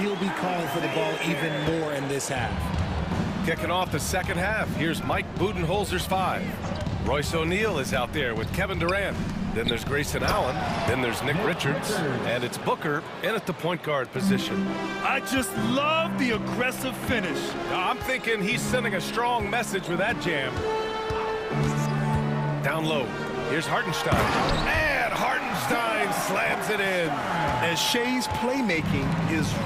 be calling for the ball even more in this half. Kicking off the second half, here's Mike Budenholzer's 5. Royce O'Neal is out there with Kevin Durant. Then there's Grayson Allen. Then there's Nick Richards. And it's Booker in at the point guard position. I just love the aggressive finish. Now, I'm thinking he's sending a strong message with that jam. Down low. Here's Hartenstein. And Hartenstein slams it in. And Shea's playmaking is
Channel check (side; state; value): both; identical; correlation 1.00